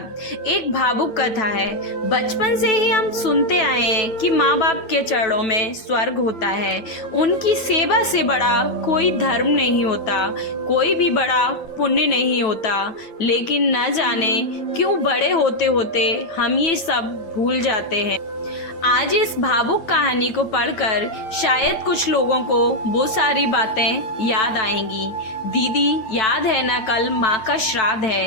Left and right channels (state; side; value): late; right; 9.1 ms